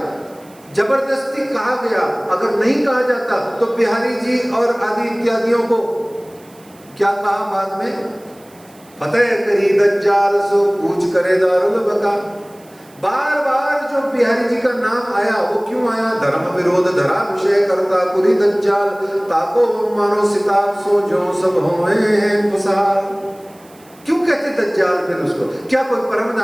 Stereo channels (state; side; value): noise; right; hiss, 27 dB below the sound